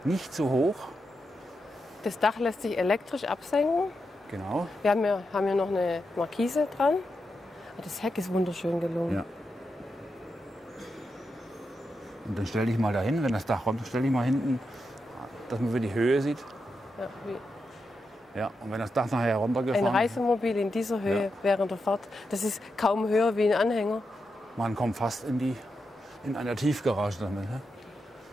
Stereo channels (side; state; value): both; normal; correlation 0.86